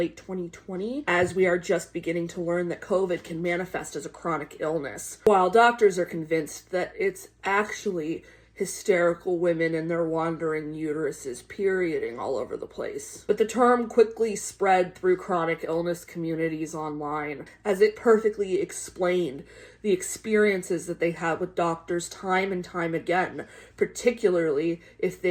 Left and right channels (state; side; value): identical; both; correlation 1.00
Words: 2020, as we are just beginning to learn that COVID can manifest as a chronic illness, while doctors are convinced that it's actually hysterical women and their wandering uteruses perioding all over the place. But the term quickly spread through chronic illness communities online, as it perfectly explained the experiences that they had with doctors time and time again, particularly if